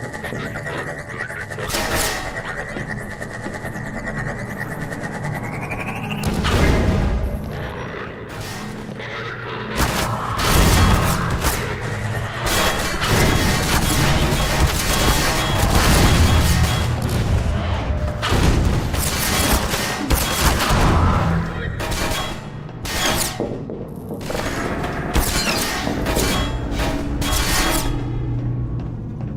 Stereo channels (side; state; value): both; identical; correlation 1.00